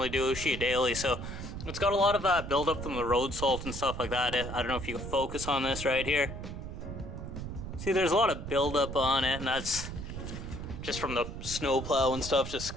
do, sheet daily, so it's got a lot of buildup from the road salt and stuff like that. I don't know if you can focus on this right here. See, there's a lot of buildup on it, and that's just from the snow plow and stuff, just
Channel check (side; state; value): right; noise; rumble, 8 dB below the sound